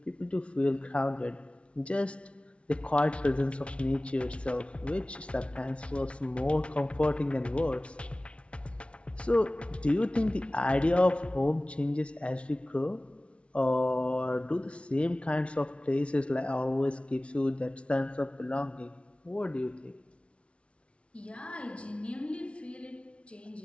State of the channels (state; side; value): late; right; 0.060 ms